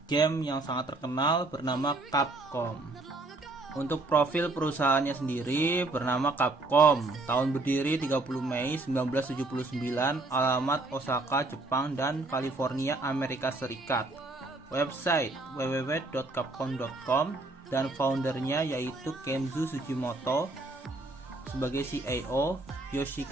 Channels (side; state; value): left; quieter; 3.0 dB